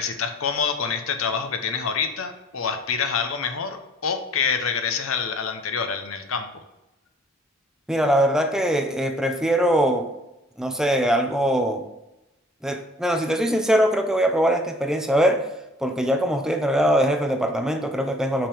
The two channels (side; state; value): both; normal; correlation 0.55